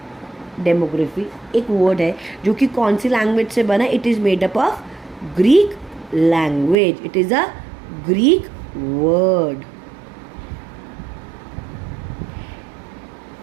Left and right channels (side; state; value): left; drops out; at 6.8 s